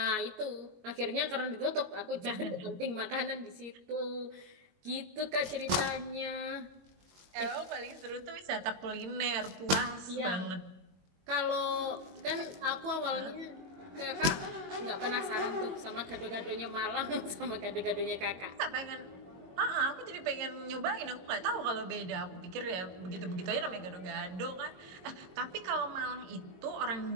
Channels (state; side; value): late; left; 22 ms